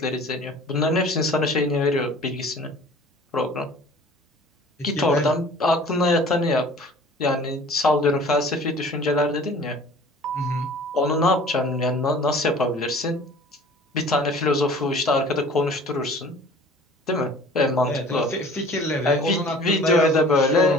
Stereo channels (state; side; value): normal; both; correlation 0.47